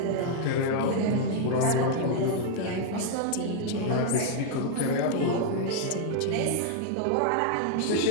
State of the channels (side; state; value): both; different; correlation 0.00